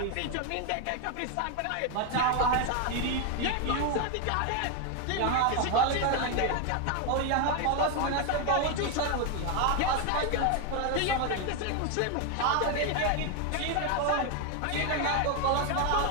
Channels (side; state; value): both; different; correlation 0.01